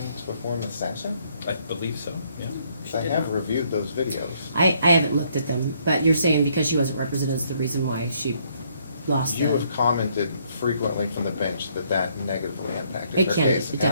before Ms. Sasser? I believe so, yeah. I have reviewed those videos. I haven't looked at them, but you're saying because she wasn't represented is the reason why she lost You the. have commented frequently from the bench that that negatively impacted It her can, case, it and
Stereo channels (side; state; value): both; inverted; correlation -0.69